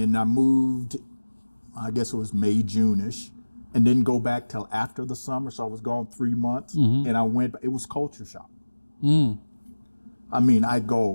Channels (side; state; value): both; inverted; correlation -1.00